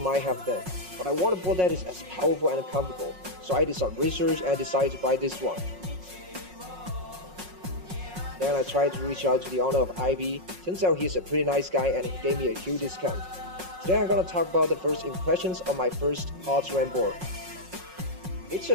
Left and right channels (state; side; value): late; left; 5.5 ms